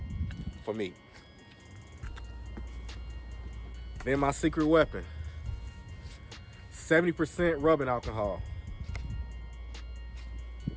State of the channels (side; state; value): both; identical; correlation 1.00